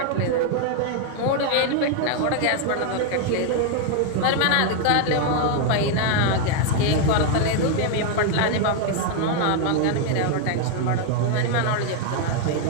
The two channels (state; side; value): different; both; correlation 0.00